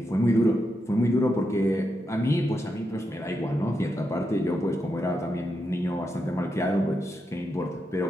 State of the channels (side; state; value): both; normal; correlation 0.85